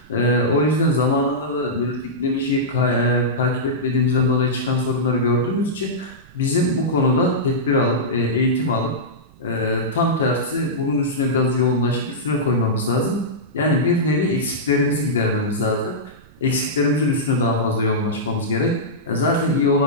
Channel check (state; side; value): noise; right; rumble, 26 dB below the sound